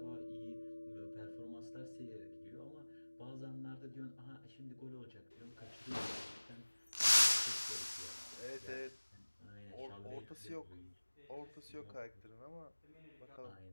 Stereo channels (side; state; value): both; inverted; correlation -1.00